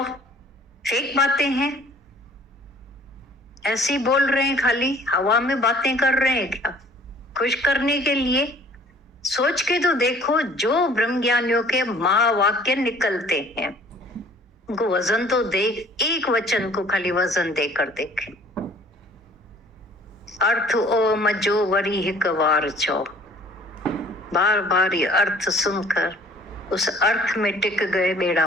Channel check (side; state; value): both; normal; correlation 0.54